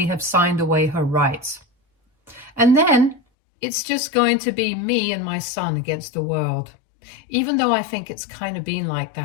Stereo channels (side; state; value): right; drops out; at 3.2 s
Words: have signed away her rights. And then it's just going to be me and my son against the world, even though I think it's kind of been like